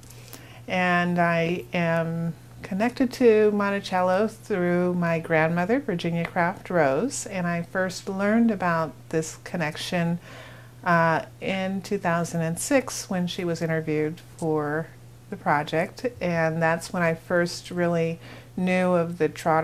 And I am connected to Monticello through my grandmother, Virginia Craft Rose, and I first learned about this connection in 2006 when she was interviewed for the project, and that's when I first really knew of the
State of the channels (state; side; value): identical; both; correlation 1.00